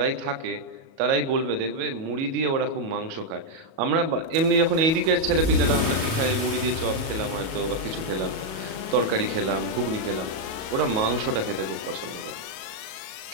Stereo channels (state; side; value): late; left; 37 ms